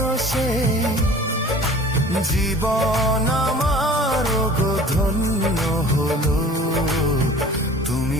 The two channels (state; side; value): normal; both; correlation 0.46